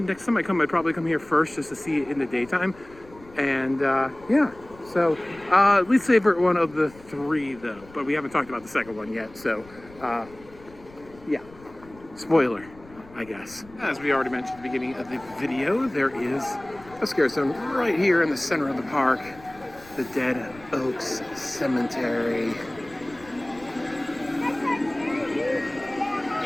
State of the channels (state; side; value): noise; left; rumble, 22 dB below the sound